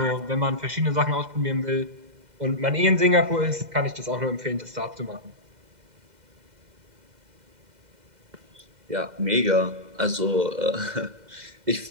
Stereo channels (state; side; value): late; left; 2.0 ms